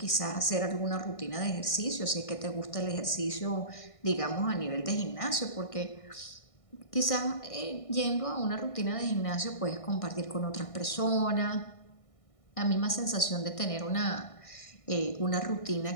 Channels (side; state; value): right; late; 1.6 ms